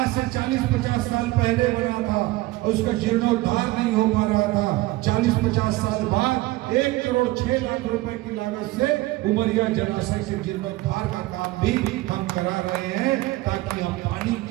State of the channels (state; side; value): quieter; left; 18.8 dB